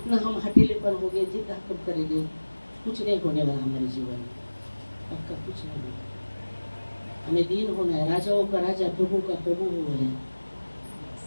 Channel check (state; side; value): inverted; both; correlation -1.00